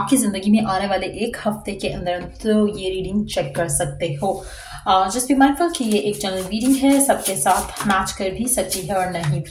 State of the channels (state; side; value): identical; both; correlation 1.00